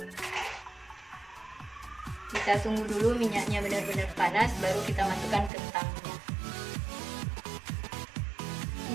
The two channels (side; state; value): left; drops out; at 5.5 s